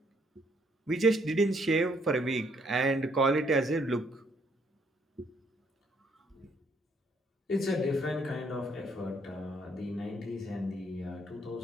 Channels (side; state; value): both; normal; correlation 0.69